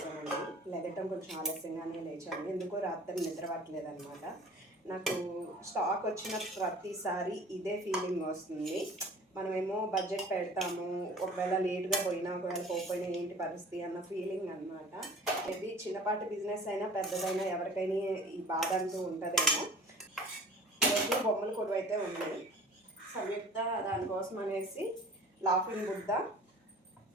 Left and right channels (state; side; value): normal; both; correlation 0.46